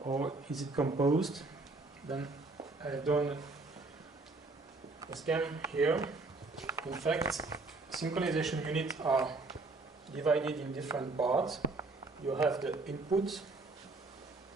Or is it composed? Then I've done a scan here. In fact, synchronization units are divided in different parts. You have the input,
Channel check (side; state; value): left; quieter; 3.4 dB